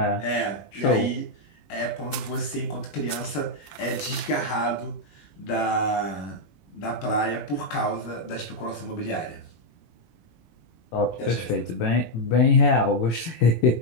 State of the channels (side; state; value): right; late; 18 ms